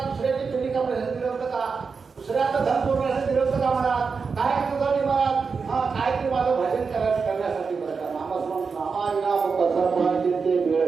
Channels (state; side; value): quieter; left; 5.1 dB